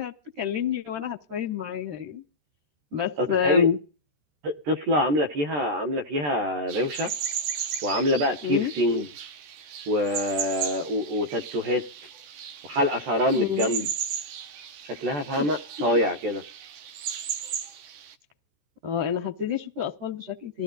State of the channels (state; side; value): late; left; 14 ms